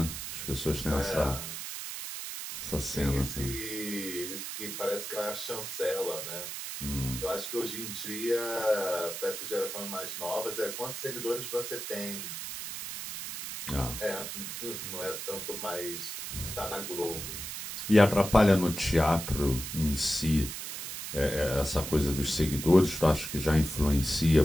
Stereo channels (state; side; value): noise; right; hiss, 7 dB below the sound